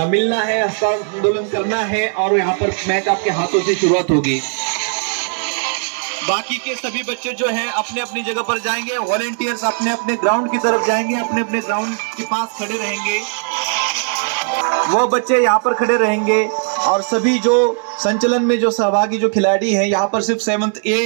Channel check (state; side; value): silent; left; 57 dB below the other